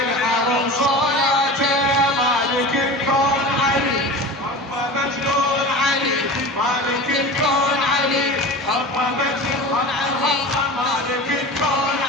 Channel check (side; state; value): both; normal; correlation 0.33